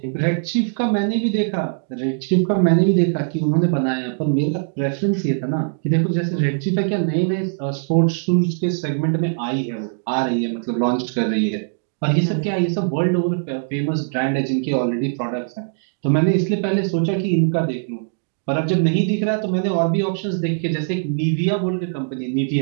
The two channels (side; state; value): left; silent; digital silence